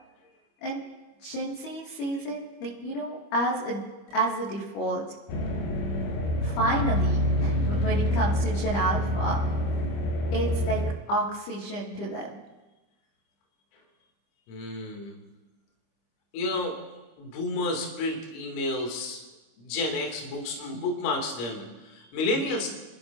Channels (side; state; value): right; late; 25 ms